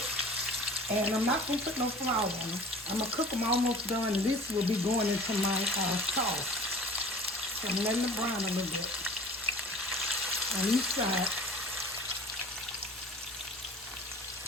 And I'm not going to put no flour on them. I'm going to cook them almost done. This will be going into my sauce. So I'm letting it brown a little bit on each side.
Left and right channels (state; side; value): normal; both; correlation 0.43